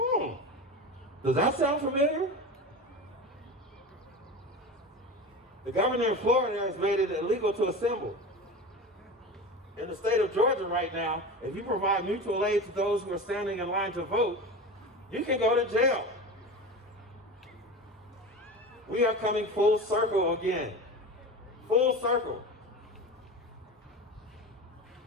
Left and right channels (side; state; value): both; normal; correlation 0.29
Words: Does that sound familiar? The governor of Florida has made it illegal to assemble. In the state of Georgia right now, if you provide mutual aid to those who are standing in line to vote, you can go to jail. We are coming full circle again. Full circle.